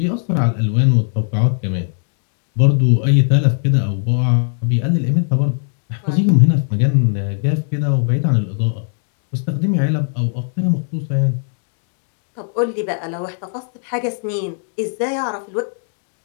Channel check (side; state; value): right; silent; digital silence